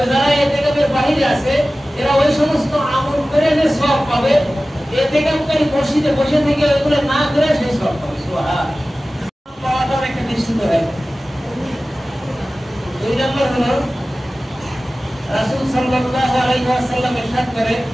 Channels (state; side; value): normal; both; correlation 0.96